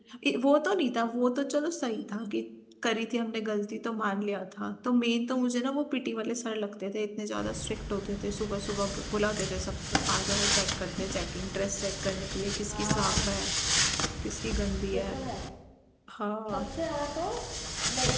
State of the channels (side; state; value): both; identical; correlation 1.00